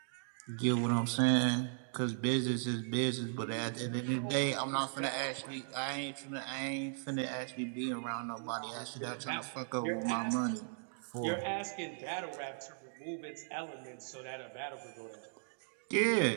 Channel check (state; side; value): silent; left; digital silence